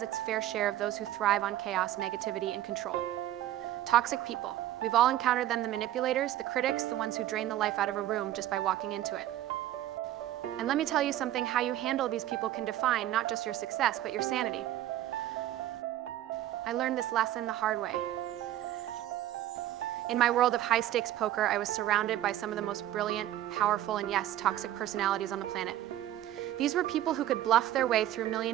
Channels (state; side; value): quieter; left; 13.2 dB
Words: its fair share of those who thrive on chaos, negativity, and control. Toxic people. We've all encountered them, the manipulators, the critics, the ones who drain the life out of a room just by walking into it. And let me tell you something, how you handle these people can define not just your success, but your sanity. I learned this lesson the hard way. In my world of high-stakes poker, I was surrounded by some of the most brilliant, powerful, and yes, toxic personalities on the planet. These were people who could bluff their way through